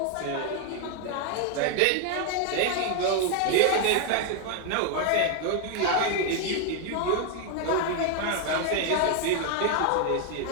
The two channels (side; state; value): both; different; correlation 0.01